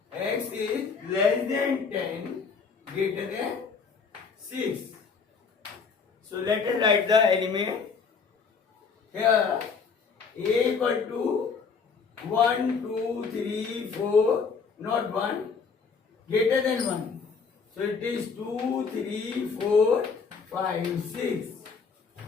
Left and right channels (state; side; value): quieter; right; 5.4 dB